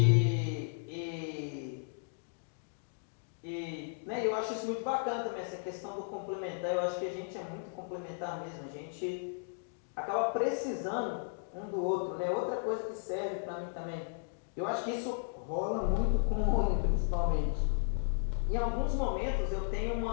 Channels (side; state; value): right; silent; digital silence